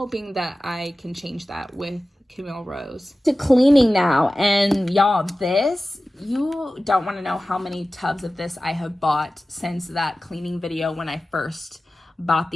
that I can change that with Camille Rose. To cleaning now, and y'all, this, you don't want to know how many tubs of this I have bought since that cleaning video when I first bought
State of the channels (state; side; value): normal; both; correlation 0.96